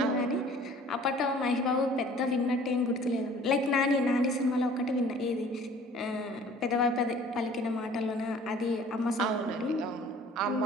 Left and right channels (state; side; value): normal; both; correlation 0.50